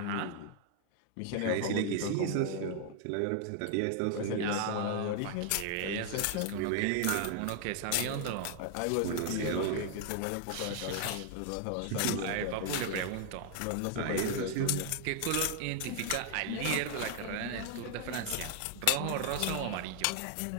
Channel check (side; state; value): both; different; correlation 0.00